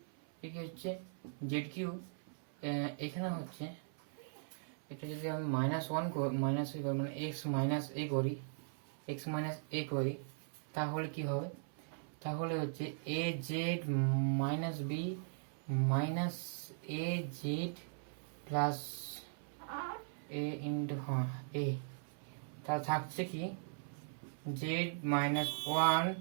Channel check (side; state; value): left; silent; 52 dB below the other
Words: এটা হচ্ছে z কিউব এখানে হচ্ছে এটা যদি আমি মাইনাস a করি মানে x মাইনাস a করি তাহলে কি হবে তাহলে হচ্ছে az minus b minus az plus a into a তা থাকছে কি z মাইনাস 1